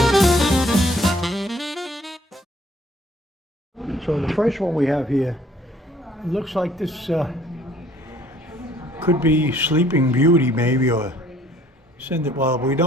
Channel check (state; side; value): normal; both; correlation 0.59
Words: So the first one we have here, looks like this could be Sleeping Beauty maybe, or Cinderella. We